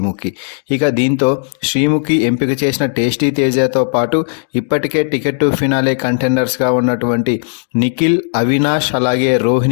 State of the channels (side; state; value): right; silent; digital silence